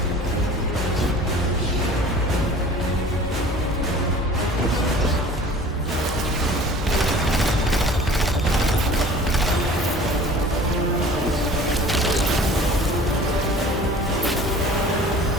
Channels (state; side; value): normal; both; correlation 0.46